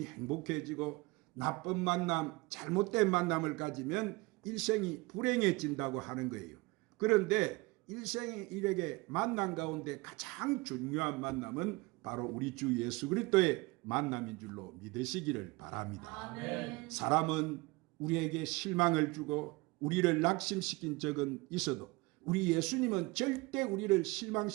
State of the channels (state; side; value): quieter; left; 23.7 dB